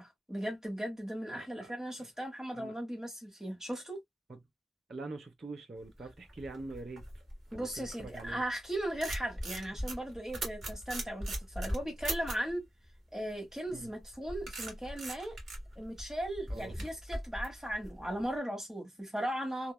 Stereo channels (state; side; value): normal; both; correlation 0.91